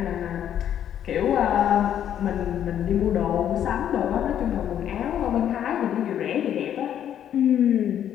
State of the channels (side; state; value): right; quieter; 10.1 dB